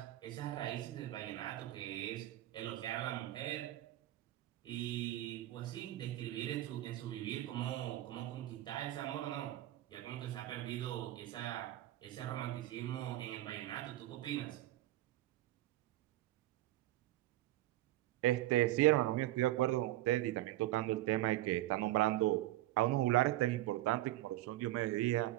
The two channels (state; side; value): quieter; left; 15.6 dB